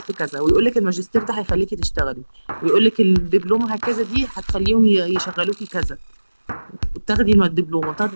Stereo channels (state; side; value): inverted; both; correlation -1.00